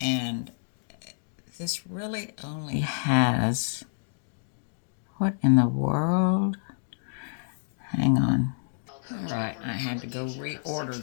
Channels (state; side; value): silent; right; digital silence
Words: and this really only has, what in the world? Hang on. All right, I had to go reorder